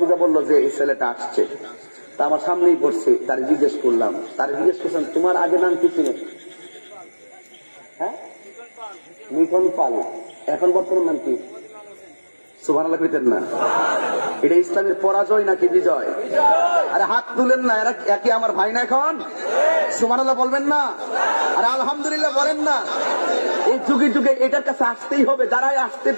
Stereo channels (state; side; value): inverted; both; correlation -1.00